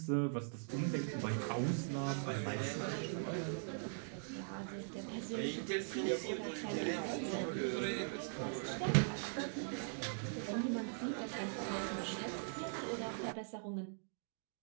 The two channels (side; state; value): left; silent; digital silence